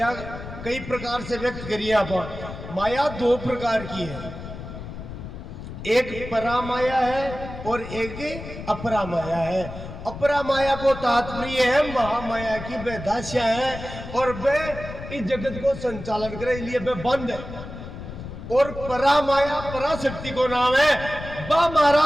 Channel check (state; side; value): noise; left; rumble, 11 dB below the sound